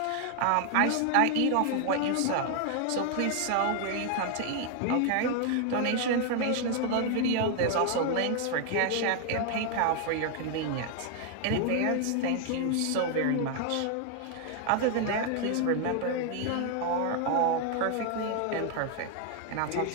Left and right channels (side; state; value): both; different; correlation 0.00